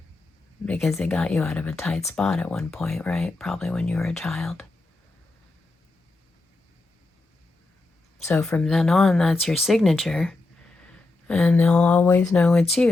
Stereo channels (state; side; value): quieter; right; 3.1 dB